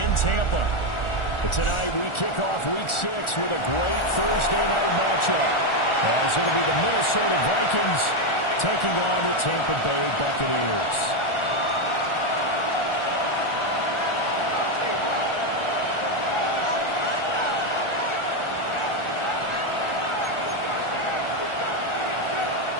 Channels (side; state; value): right; late; 1.4 ms